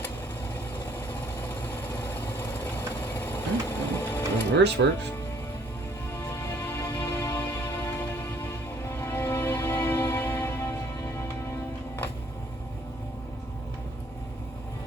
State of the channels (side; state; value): both; normal; correlation 0.62